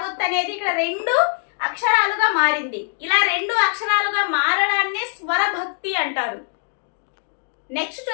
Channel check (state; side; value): silent; right; digital silence